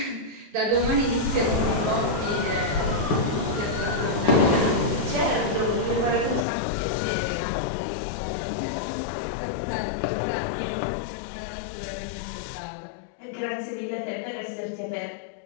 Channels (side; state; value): right; drops out; at 6.5 s